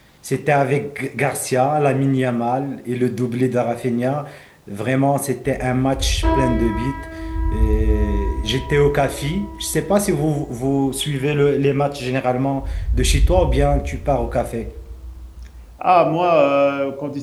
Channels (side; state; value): both; identical; correlation 1.00